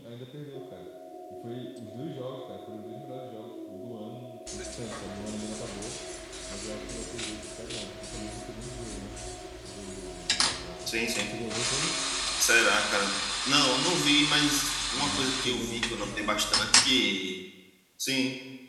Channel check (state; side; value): identical; both; correlation 1.00